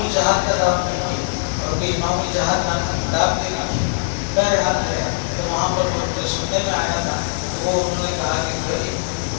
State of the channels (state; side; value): silent; right; digital silence